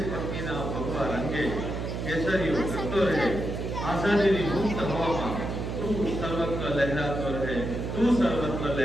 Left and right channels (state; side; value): noise; right; hum, 4 dB below the sound